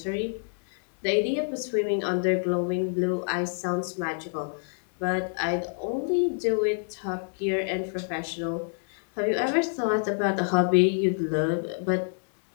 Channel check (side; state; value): right; silent; digital silence